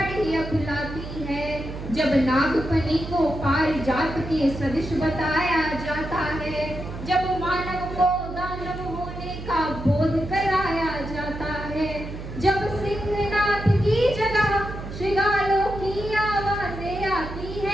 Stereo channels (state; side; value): noise; right; hum, 9 dB below the sound